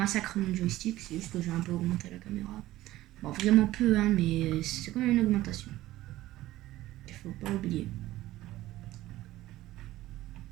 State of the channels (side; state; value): left; quieter; 15.9 dB